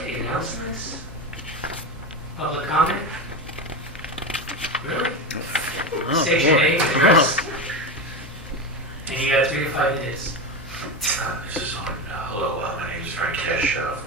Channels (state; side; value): normal; both; correlation 0.19